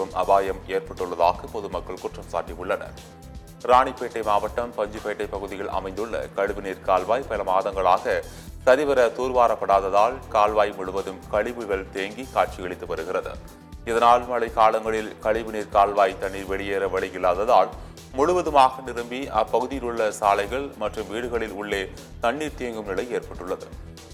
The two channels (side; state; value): both; identical; correlation 1.00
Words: அபாயம் ஏற்பட்டுள்ளதாக பொதுமக்கள் குற்றம் சாட்டியுள்ளனர். ராணிப்பேட்டை மாவட்டம் பஞ்சுப்பேட்டை பகுதியில் அமைந்துள்ள கழிவுநீர் கால்வாய் பல மாதங்களாக சரிவர தூர்வாரப்படாததால் கால்வாய் முழுவதும் கழிவுகள் தேங்கி காட்சியளித்து வருகிறது. இதனால் மழை காலங்களில் கழிவுநீர் கால்வாய் தண்ணீர் வெளியேற வழி இல்லாததால் முழுவதுமாக நிரம்பி அப்பகுதியில் உள்ள சாலைகள் மற்றும் வீடுகளில் உள்ளே தண்ணீர் தேங்கும் நிலை ஏற்பட்டுள்ளது.